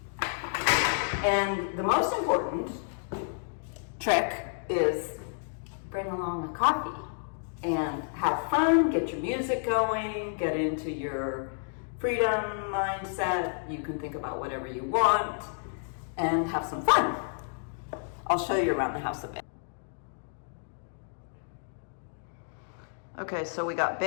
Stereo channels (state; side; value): silent; right; digital silence